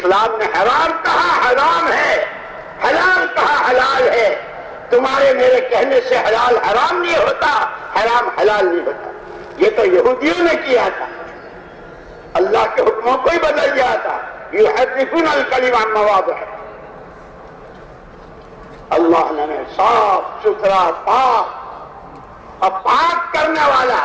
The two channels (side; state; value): both; identical; correlation 1.00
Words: نے حرام کہا حرام ہے، حلال کہا حلال ہے. تمہارے میرے کہنے سے حلال حرام نہیں ہوتا، حرام حلال نہیں ہوتا. یہ تو یہودیوں نے کیا تھا، اللہ کے حکموں کو ہی بدل دیا تھا. یحرفون الکلم عن مواضعہ. اللہ نے صاف ستھرا پاک اور پاک کرنے والا،